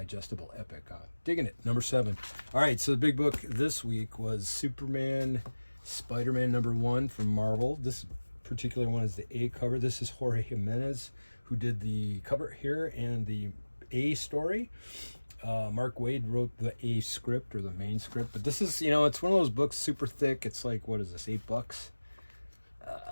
epic. Digging it. #7. All right, so the big book this week was Superman, Spider-Man #1 from Marvel. This particular one is the A cover. This is Jorge Jimenez who did the cover here and the A story. Mark Waid wrote the A script or the main script, but this is, it's one of those books super thick. It's like, what is this, $8?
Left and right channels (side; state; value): both; inverted; correlation -1.00